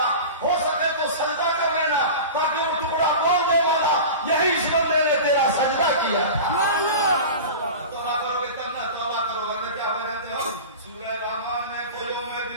ہو سکے تو سجدہ کر لینا تاکہ وہ ٹکڑا بول دے والا یہی اس بندے نے تیرا سجدہ کیا۔ توبہ کرو گے تب نہ، توبہ کرو ورنہ کیا ہو جاتے ہو۔ سورہ رحمان میں کوئی میں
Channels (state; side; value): inverted; both; correlation -0.32